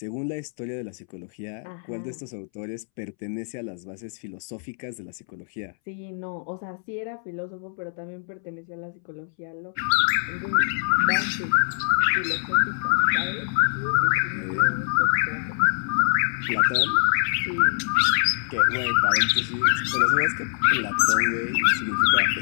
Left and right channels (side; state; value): right; silent; 62 dB below the other